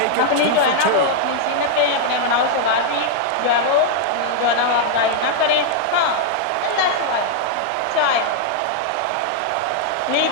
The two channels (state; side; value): different; both; correlation -0.01